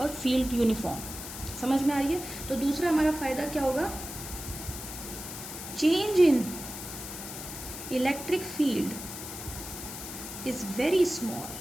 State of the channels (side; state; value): left; noise; hiss, 9 dB below the sound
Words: फील्ड यूनिफॉर्म। समझ में आ रही है? तो दूसरा हमारा फायदा क्या होगा, change in electric field is very small,